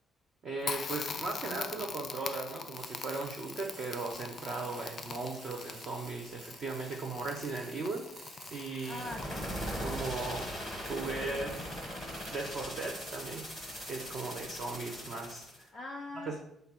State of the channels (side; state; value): both; normal; correlation 0.69